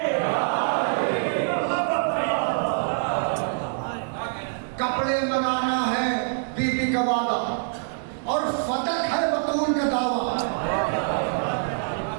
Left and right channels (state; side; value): silent; left; digital silence